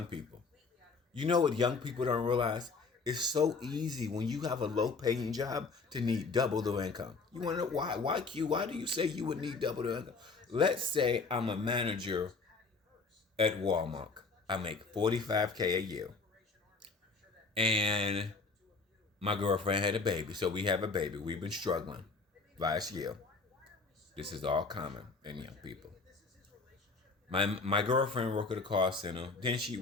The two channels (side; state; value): right; quieter; 4.2 dB